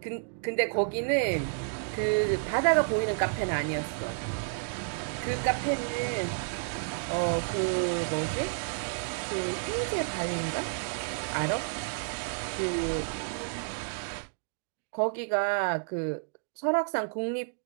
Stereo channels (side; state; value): left; silent; digital silence